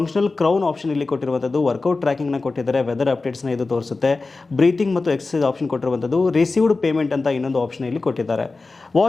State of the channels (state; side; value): quieter; right; 3.7 dB